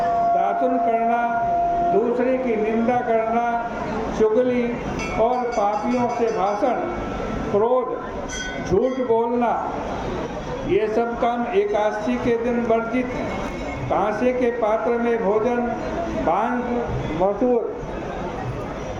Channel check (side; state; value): both; identical; correlation 1.00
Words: दातुन करना, दूसरे की निंदा करना, चुगली और पापियों से भाषण, क्रोध, झूठ बोलना, ये सब काम एकादशी के दिन वर्जित हैं। कांसे के पात्र में भोजन, बांस, मसूर,